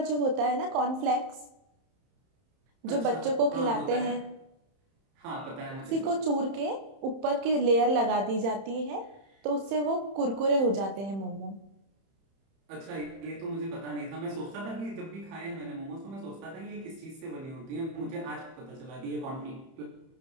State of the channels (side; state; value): left; late; 31 ms